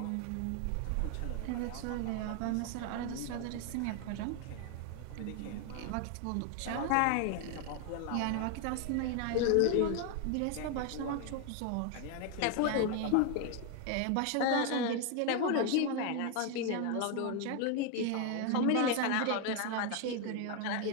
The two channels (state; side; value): different; both; correlation 0.01